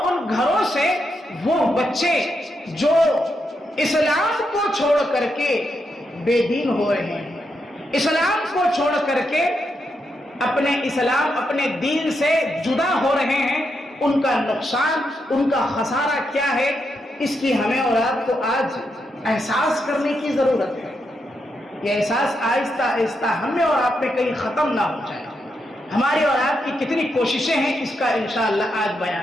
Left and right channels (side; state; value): both; normal; correlation 0.82